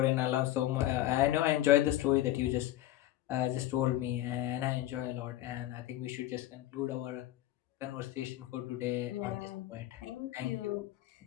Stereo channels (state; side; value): quieter; right; 14.5 dB